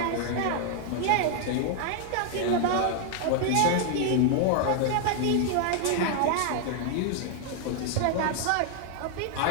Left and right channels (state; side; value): different; both; correlation 0.00